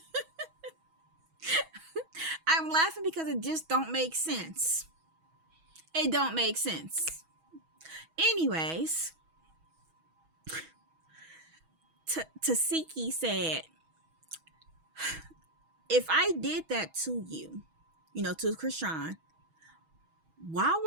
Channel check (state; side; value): late; left; 6.2 ms